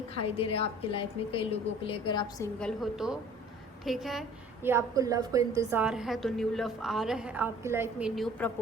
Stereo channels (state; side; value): normal; both; correlation 0.50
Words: दे रहा है आपकी लाइफ में, कई लोगों के लिए, अगर आप सिंगल हो तो, ठीक है। या आपको लव को इंतज़ार है तो न्यू लव आ रहा है आपकी लाइफ में, न्यू